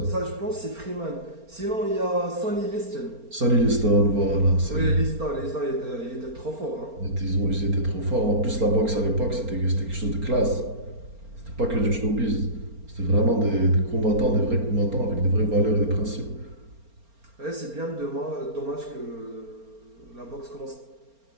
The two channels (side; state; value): left; late; 4.3 ms